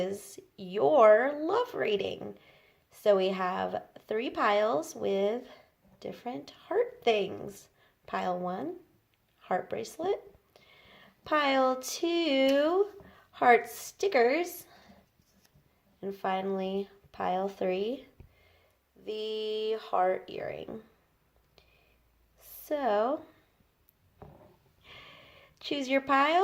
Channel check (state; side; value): identical; both; correlation 1.00